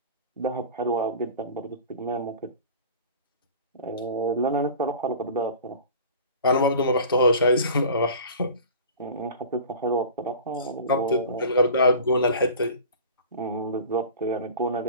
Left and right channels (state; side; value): inverted; both; correlation -0.39